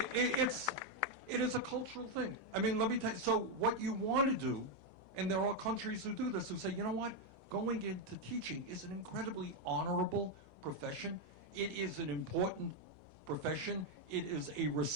is a cultural thing. I mean, let me tell you, so what you want to do, and there are countries who do this, who say, you know what, going into teaching is an incredibly honorable profession. It is an important profession. It is a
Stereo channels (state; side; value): noise; left; hum, 23 dB below the sound